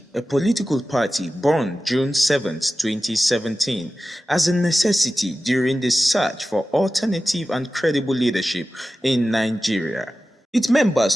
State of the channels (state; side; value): normal; both; correlation 0.95